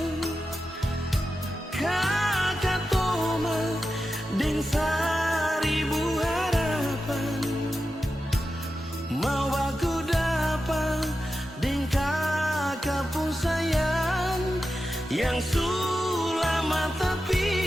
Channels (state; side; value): normal; both; correlation 0.91